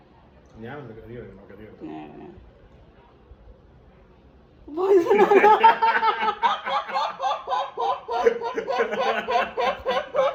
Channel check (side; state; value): both; identical; correlation 1.00